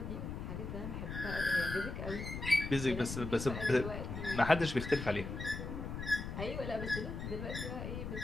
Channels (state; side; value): noise; left; rumble, 6 dB below the sound